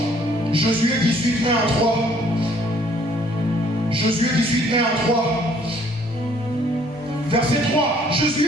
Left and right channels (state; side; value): normal; both; correlation 0.61